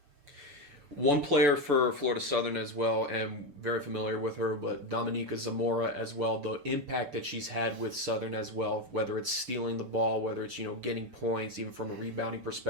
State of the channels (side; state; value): left; late; 6.9 ms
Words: One player for Florida Southern as well, and very familiar with her, but Dominica Zamora as well, the impact that she's had with Southern as well, whether it's stealing the ball, whether it's getting points, even from a rebounding